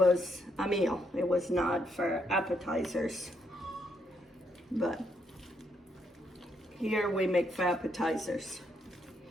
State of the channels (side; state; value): both; normal; correlation 0.76